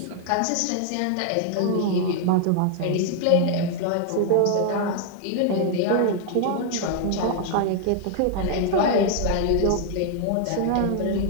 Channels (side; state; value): both; different; correlation 0.00